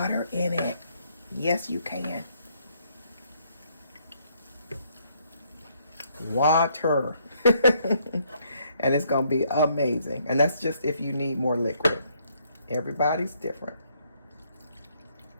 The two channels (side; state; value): both; inverted; correlation -0.70